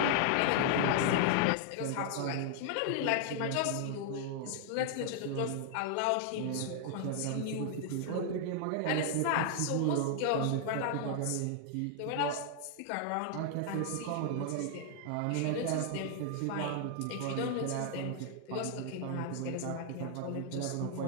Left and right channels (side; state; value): both; different; correlation 0.00